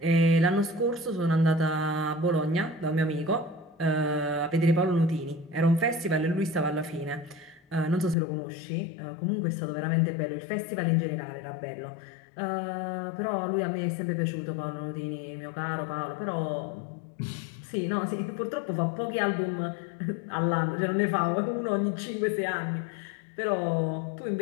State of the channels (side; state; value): right; drops out; at 8.2 s